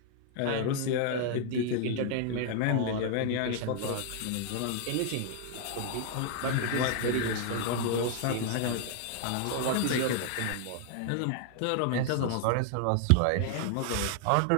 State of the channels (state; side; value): different; both; correlation 0.00